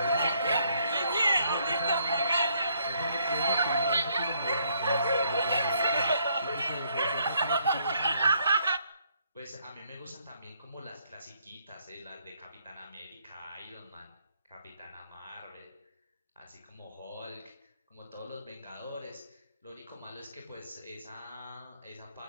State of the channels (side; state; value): both; inverted; correlation -0.70